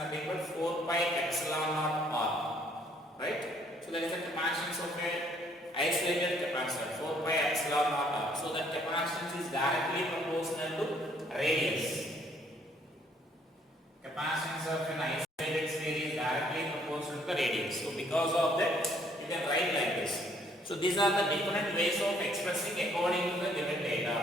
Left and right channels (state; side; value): normal; both; correlation 0.65